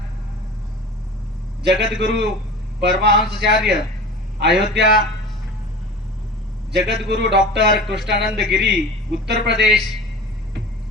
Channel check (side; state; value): both; normal; correlation 0.36